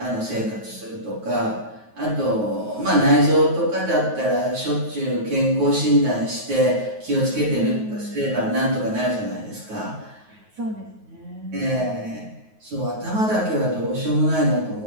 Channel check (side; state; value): left; late; 9.4 ms